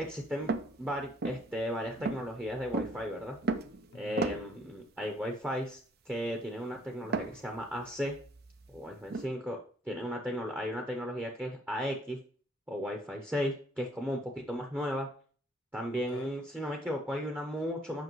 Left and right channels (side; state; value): both; normal; correlation 0.63